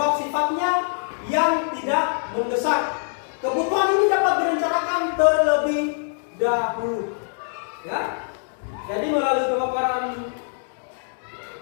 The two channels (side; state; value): right; silent; digital silence